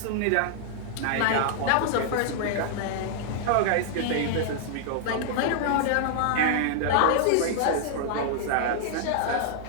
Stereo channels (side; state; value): both; different; correlation -0.01